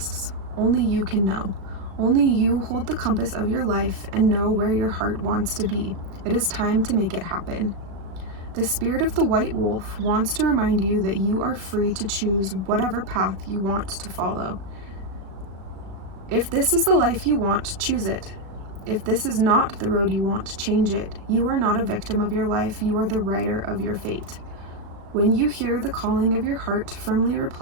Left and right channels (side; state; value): left; late; 36 ms